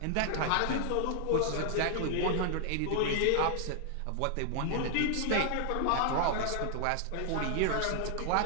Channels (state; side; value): different; both; correlation 0.00